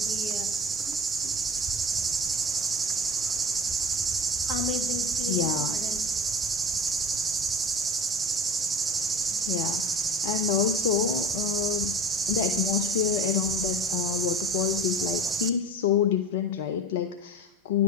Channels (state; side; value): normal; both; correlation 0.33